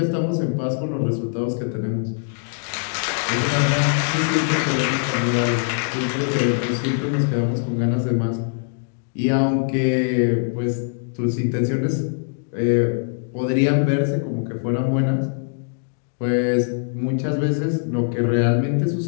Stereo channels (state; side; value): silent; right; digital silence